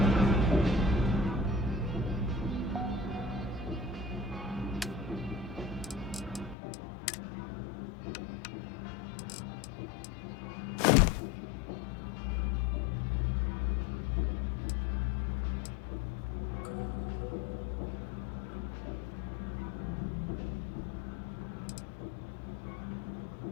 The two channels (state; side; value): drops out; right; at 6.6 s